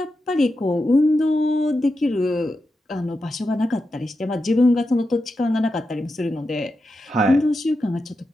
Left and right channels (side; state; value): both; normal; correlation 0.89